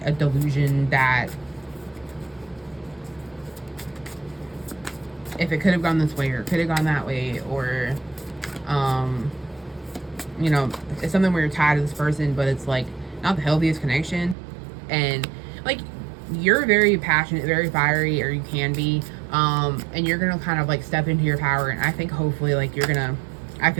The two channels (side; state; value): left; drops out; at 14.4 s